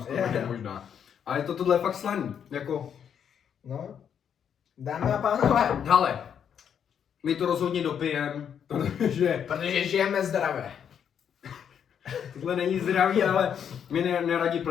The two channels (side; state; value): right; quieter; 8.2 dB